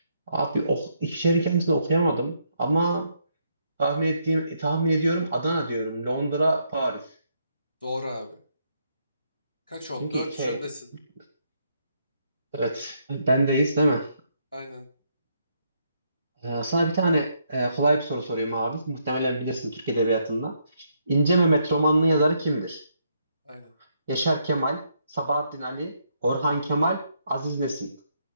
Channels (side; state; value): both; inverted; correlation -0.75